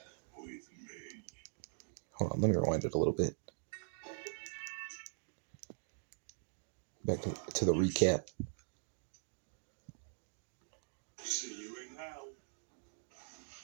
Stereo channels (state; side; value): silent; left; digital silence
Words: Hold on, let me rewind it a little bit. Back to the recap.